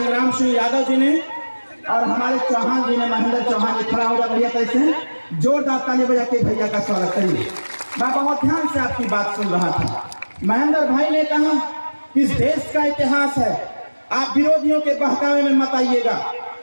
सिंह यादव जी ने और हमारे चौहान जी ने, महेंद्र चौहान जी खड़ा होगा भैया, कैसे जोरदार ताली बजा के भैया का स्वागत करिए। मैं बहुत ध्यान से आपकी बात सुन रहा था। महेंद्र भाई ने कहा कि इस देश का इतिहास है, आप विरोधियों के बहकावे में मत आइएगा।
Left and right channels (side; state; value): both; inverted; correlation -1.00